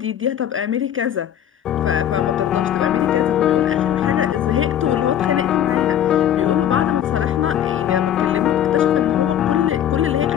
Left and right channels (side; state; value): right; quieter; 10.3 dB